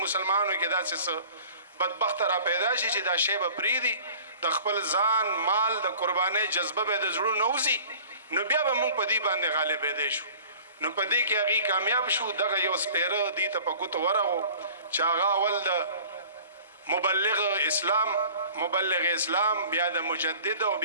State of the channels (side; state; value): both; inverted; correlation -0.46